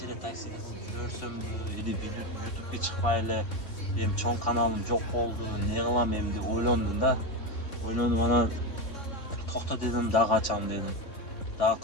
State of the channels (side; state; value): right; late; 3.6 ms